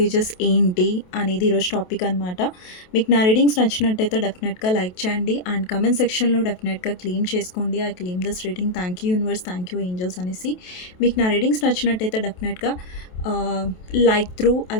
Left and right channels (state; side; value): late; right; 28 ms